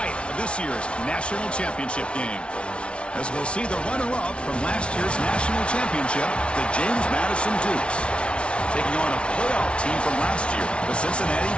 of this year's national championship game. As we'll see the runner-up from last year's national championship, the James Madison Dukes, taking on a playoff team from last year, the Cincinnati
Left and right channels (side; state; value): right; late; 0.059 ms